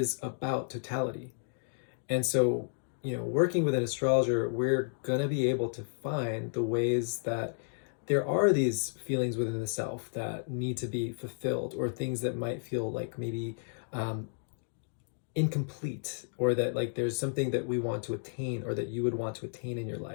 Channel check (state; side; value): silent; right; digital silence